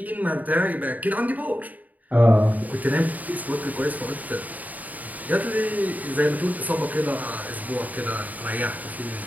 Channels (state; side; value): late; left; 0.077 ms